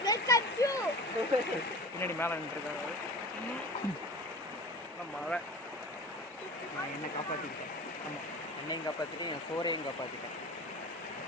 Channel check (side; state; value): both; normal; correlation 0.37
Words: பின்னாடி மேலே நின்றுருக்காங்க. மழை என்னை காப்பாற்றிக்கிட்டேன். ஆமாம், அன்னையும் காப்பாற்றிட்டு என் சோறையும் காப்பாற்றிட்டேன்.